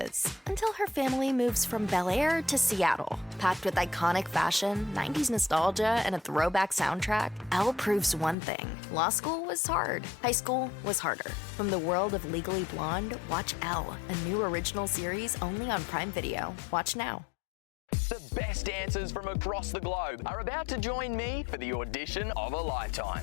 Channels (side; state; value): right; drops out; at 8.3 s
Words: until her family moves from Bel Air to Seattle. Packed with iconic fashion, 90s nostalgia, and a throwback soundtrack, Elle proves one thing. Law school was hard. High school was harder. From the world of Legally Blonde, watch Elle, a new original series only on Prime Video. Watch now. The best dancers from across the globe are about to join me for the audition of a